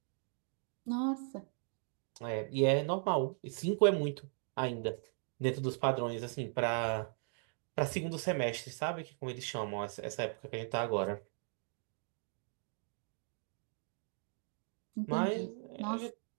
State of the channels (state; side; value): silent; left; 52 dB below the other